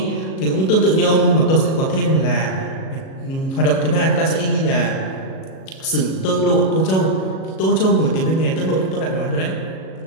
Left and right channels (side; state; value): right; late; 37 ms